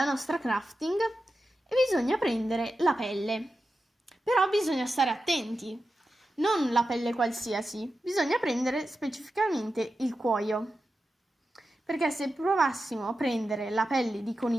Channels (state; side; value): normal; both; correlation 0.91